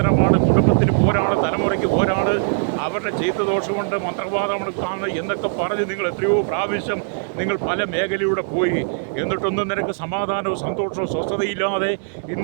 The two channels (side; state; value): left; silent; digital silence